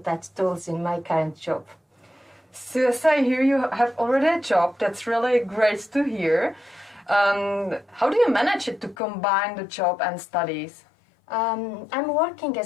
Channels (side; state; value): right; drops out; at 9.0 s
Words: that tools in my current job. So as I hear you have already a job, that's really great to hear. How do you manage it to combine the job and studies? I'm working